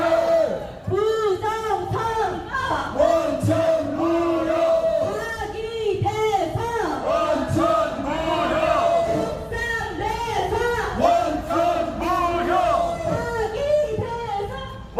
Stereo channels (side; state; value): both; identical; correlation 1.00